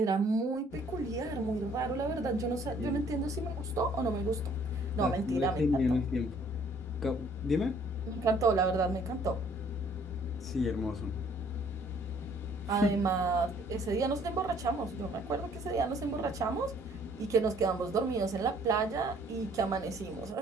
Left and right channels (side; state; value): both; normal; correlation 0.60